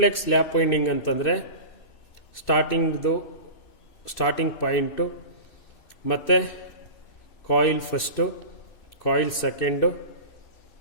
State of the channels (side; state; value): right; late; 2.6 ms